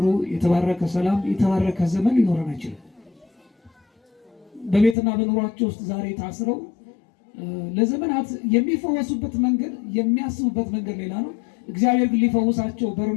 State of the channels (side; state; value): right; drops out; at 5.0 s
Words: የተባረከ ሰላም፣ የተባረከ ዘመን ሊኖረን አይችልም። በቤትና በኑሯቸው ውስጥ ዛሬ ታስረው ለዘመናት የሚፈወሱበት መንገድ የሚያስቡበት መንገድ ሌላ ነው። እግዚአብሔር ግን ሊፈውሳቸው